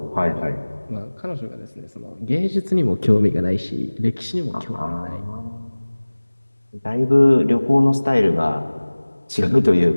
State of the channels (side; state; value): both; inverted; correlation -1.00